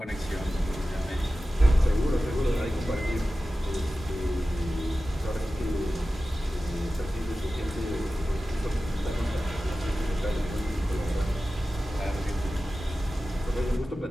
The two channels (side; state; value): both; normal; correlation 0.95